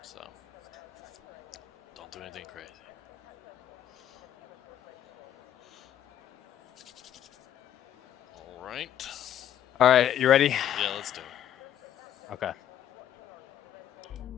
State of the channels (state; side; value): quieter; right; 10.7 dB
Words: So don't do anything crazy. All right, you ready? Yeah, let's do it. Okay.